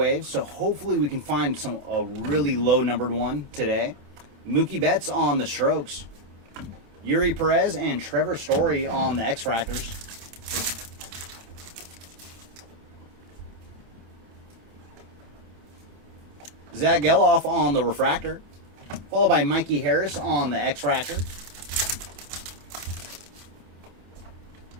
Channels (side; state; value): left; late; 27 ms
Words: So hopefully we can find a really low numbered one today. Mookie Betts on the strokes. Yuri Perez and Trevor Story on the X-Fractors. Zach Geloff on the refractor. Followed by Mikey Harris on the X-Fractor.